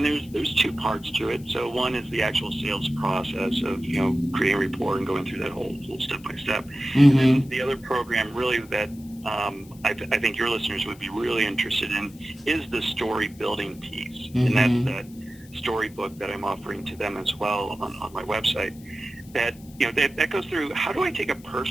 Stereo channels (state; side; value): noise; left; hiss, 24 dB below the sound